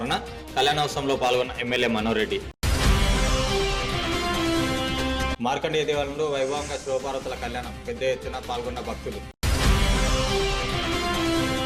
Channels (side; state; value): both; identical; correlation 1.00